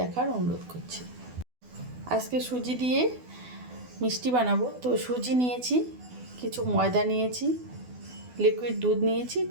অনুরোধ করছি। আজকে সুজি দিয়ে মিষ্টি বানাবো। তো সুজি নিয়েছি, কিছু ময়দা নিয়েছি, লিকুইড দুধ নিয়েছি,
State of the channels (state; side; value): late; left; 12 ms